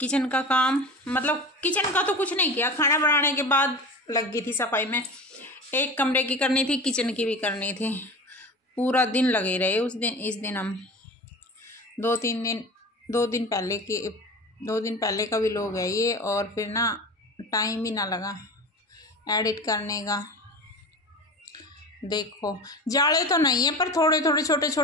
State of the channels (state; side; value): normal; both; correlation 0.33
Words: का काम किचन का तो कुछ नहीं किया। खाना बनाने के बाद लग गई थी सफाई में। एक कमरे की करनी थी, किचन की भी करनी थी। पूरा दिन लगे रहे इस दिन हम दो दिन पहले का भी लोग है ये। और फिर ना टाइम ही ना लगा एडिट करने का। देखो, जाले तो नहीं है पर थोड़े थोड़े छोटे